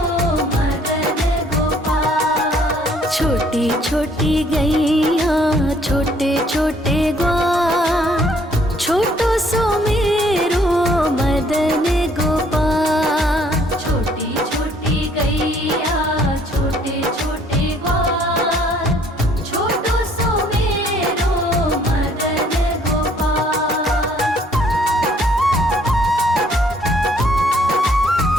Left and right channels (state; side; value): normal; both; correlation 0.62